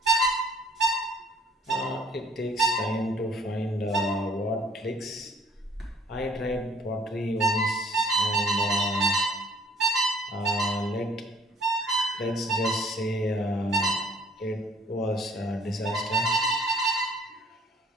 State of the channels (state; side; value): normal; both; correlation 0.57